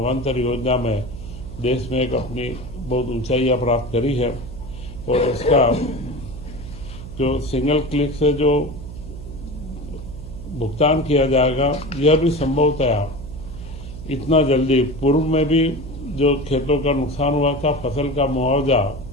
योजना में देश में एक अपनी बहुत ऊंचाइयां प्राप्त करी है। और इसका जो सिंगल क्लिक से जो भुगतान किया जाएगा, यह भी संभवतया इतना जल्दी, पूर्व में भी जो खेतों का नुकसान हुआ था, फसल का मुआवजा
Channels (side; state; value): right; noise; hum, 12 dB below the sound